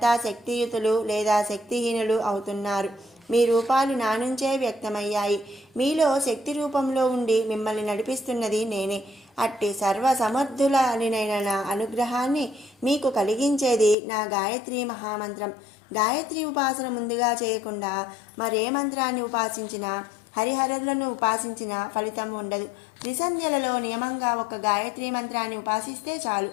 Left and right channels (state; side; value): drops out; right; at 14.0 s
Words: శక్తియుతులు లేదా శక్తిహీనులు అవుతున్నారు. మీ రూపాలు నా నుంచే వ్యక్తమయ్యాయి. మీలో శక్తి రూపంలో ఉండి మిమ్మల్ని నడిపిస్తున్నది నేనే. అట్టి సర్వసమర్థులైన నా అనుగ్రహాన్ని మీకు కలిగించేది నా గాయత్రీ మహామంత్రం. గాయత్రి ఉపాసన ముందుగా చేయకుండా మరే మంత్రాన్ని ఉపాసించినా, హరిహరులను ఉపాసించిన ఫలితం ఉండదు. త్రిసంధ్యలలో నియమంగా ఒక గాయత్రీ మంత్రాన్ని ఉపాసిస్తే చాలు,